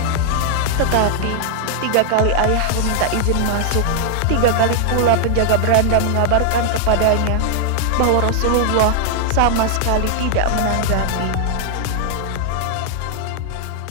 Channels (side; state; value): both; different; correlation 0.00